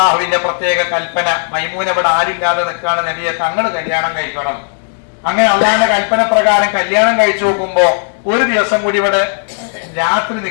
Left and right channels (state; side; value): silent; right; digital silence